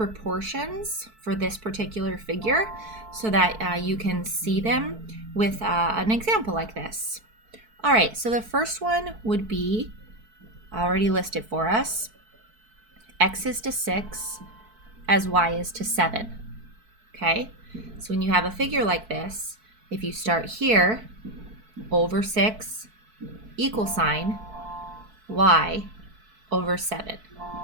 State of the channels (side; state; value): left; late; 4.6 ms